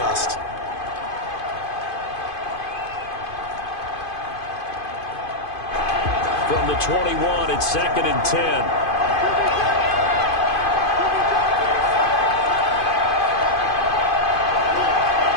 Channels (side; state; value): right; late; 2.5 ms